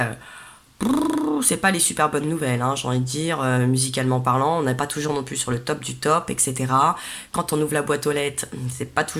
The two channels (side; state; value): both; identical; correlation 1.00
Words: c'est pas les super bonnes nouvelles, hein, j'ai envie de dire, musicalement parlant, on n'est pas toujours non plus sur le top du top, etc. Quand on ouvre la boîte aux lettres, c'est pas